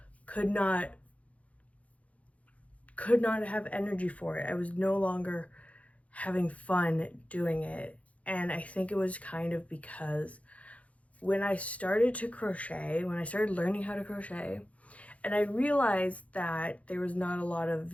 Could not have energy for it. I was no longer having fun doing it. And I think it was kind of because when I started to crochet, when I started learning how to crochet, and I realized that there was not a lot of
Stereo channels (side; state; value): right; late; 0.066 ms